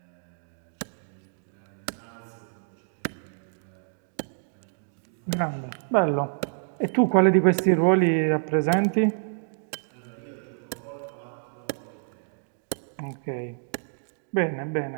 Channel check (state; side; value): silent; left; 59 dB below the other